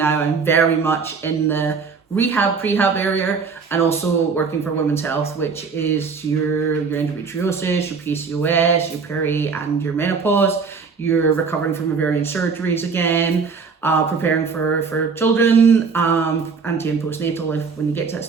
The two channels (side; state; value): left; quieter; 5.2 dB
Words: I'm very much in the prehab area, and also working for women's health, which is your endometriosis, your PCOS, your peri and your menopause. You're recovering from ovarian surgeries again, preparing for children, anti and postnatal when you get to that